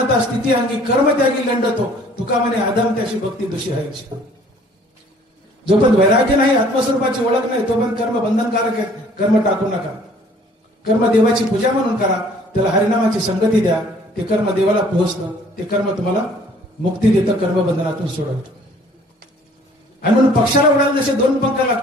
स्थिती अंगी कर्म त्यागी लंडतो, तुका म्हणे आदम त्याशी भक्ती दुषी आईची. जोपर्यंत वैराग्य नाही, आत्मस्वरूपाची ओळख नाही, तोपर्यंत कर्म बंधनकारक आहेत. कर्म टाकू नका. कर्म देवाची पूजा म्हणून करा, त्याला हरिनामाची संगती द्या. ते कर्म देवाला पोहोचतं, ते कर्म तुम्हाला मुक्ती देतं, कर्मबंधनातून सोडवतं. आणि म्हणून पक्षाला उडायला जसे दोन पंख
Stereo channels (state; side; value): normal; both; correlation 0.56